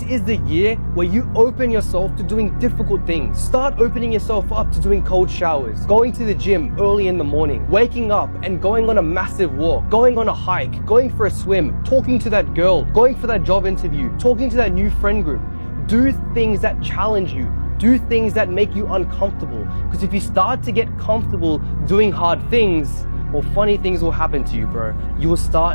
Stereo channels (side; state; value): both; inverted; correlation -1.00